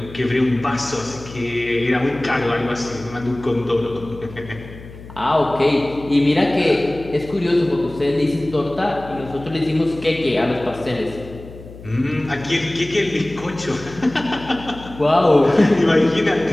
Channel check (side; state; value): left; noise; hum, 16 dB below the sound